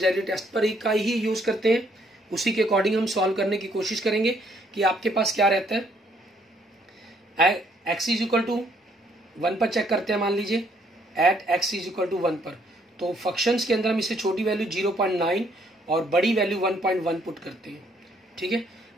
टेस्ट पर का ही यूज करते हैं, उसी के अकॉर्डिंग हम सॉल्व करने की कोशिश करेंगे कि आपके पास क्या रहता है। x इज इक्वल टू 1 पर चेक करते हैं, मान लीजिए at x is equal to 1 पर, तो फंक्शंस के अंदर हम इससे छोटी वैल्यू 0.9 और बड़ी वैल्यू 1.1 पुट करते हैं, ठीक है।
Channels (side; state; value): both; normal; correlation 0.68